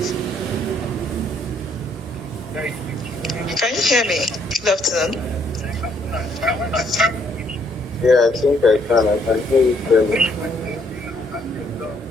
Can you hear me? Good afternoon. Yeah, I think I can. I can hear you clearly.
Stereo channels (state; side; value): normal; both; correlation 0.68